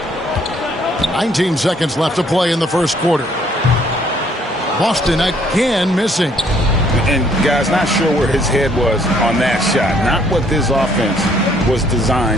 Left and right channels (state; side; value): normal; both; correlation 0.64